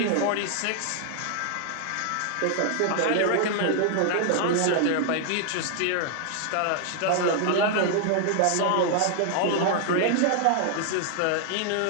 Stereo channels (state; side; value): different; both; correlation 0.00